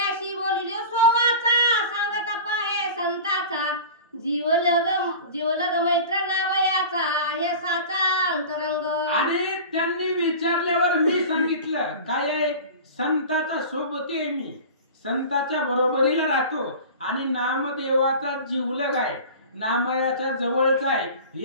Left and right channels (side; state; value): both; inverted; correlation -0.35